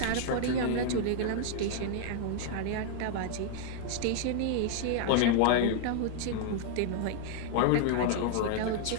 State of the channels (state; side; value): different; both; correlation 0.00